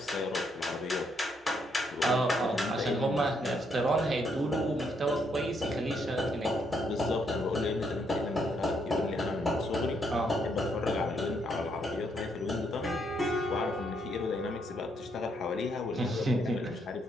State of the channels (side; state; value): both; normal; correlation 0.74